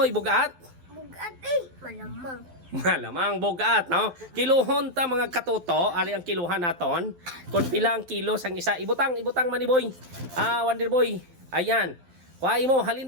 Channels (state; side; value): late; left; 12 ms